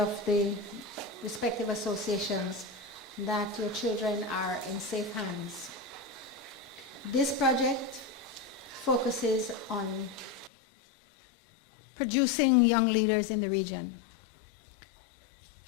the respective associations, that your children are in safe hands. This project focuses on producing young leaders in the region.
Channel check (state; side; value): drops out; right; at 10.5 s